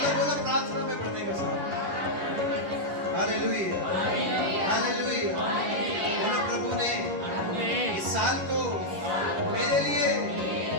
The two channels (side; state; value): left; late; 11 ms